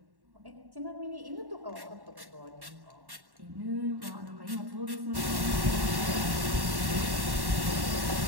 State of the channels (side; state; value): left; late; 1.1 ms